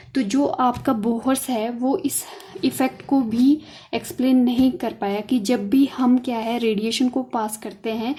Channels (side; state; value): both; identical; correlation 1.00